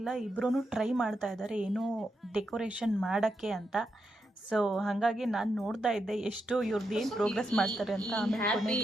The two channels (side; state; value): both; normal; correlation 0.84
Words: ಇಬ್ಬರೂ ಟ್ರೈ ಮಾಡ್ತಾ ಇದ್ದಾರೆ ಏನೋ ಡೆಕೋರೇಷನ್ ಮಾಡೋಕ್ಕೆ ಅಂತ. ಸೊ ಹಾಗಾಗಿ ನಾನು ನೋಡ್ತಾ ಇದ್ದೆ ಎಷ್ಟು ಇವ್ರದ್ದು ಏನು ಪ್ರೋಗ್ರೆಸ್ ಮಾಡ್ತಾರೆ ಅಂತ. ಆಮೇಲೆ